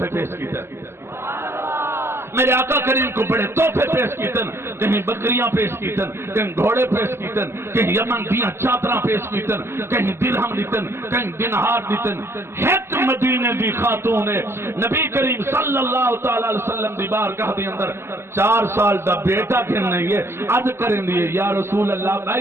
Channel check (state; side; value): late; left; 0.12 ms